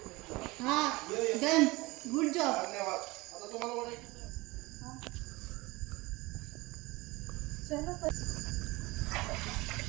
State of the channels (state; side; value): quieter; left; 22.2 dB